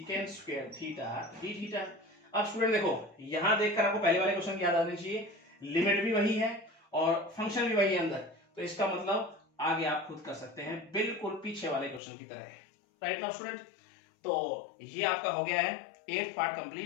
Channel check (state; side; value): drops out; right; at 12.0 s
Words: square theta D theta. अब स्टूडेंट देखो यहां देखकर आपको पहले वाले क्वेश्चन की याद आनी चाहिए, लिमिट भी वही है और फंक्शन भी वही है अंदर, तो इसका मतलब आगे आप खुद कर सकते हैं बिल्कुल पीछे वाले क्वेश्चन की तरह है। राइट नाउ स्टूडेंट, तो ये आपका हो गया है 8th पार्ट